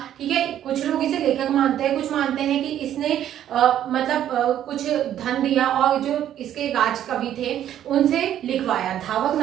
ठीक है, कुछ लोग इसे लेखक मानते हैं, कुछ मानते हैं कि इसने कुछ धन दिया और जो इसके राज कवि थे उनसे लिखवाया, धावक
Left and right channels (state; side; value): quieter; left; 11.1 dB